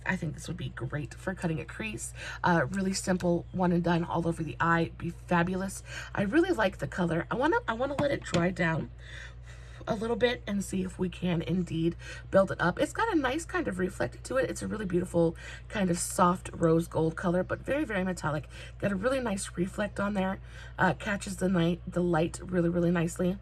think this would be great for cutting a crease. Really simple, one and done all over the eye, be fabulous. I really like the color. I wanna let it dry down a little bit and see if we can indeed build it up. It's got a nice kind of reflect to it. It's a really beautiful kind of soft rose gold color, but very metallic. Got a really nice reflect on there. Catches the light really nicely.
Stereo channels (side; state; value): both; identical; correlation 1.00